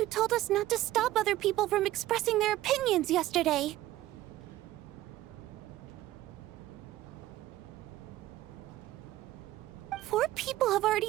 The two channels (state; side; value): quieter; left; 15.4 dB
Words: told us not to stop other people from expressing their opinions yesterday. Four people have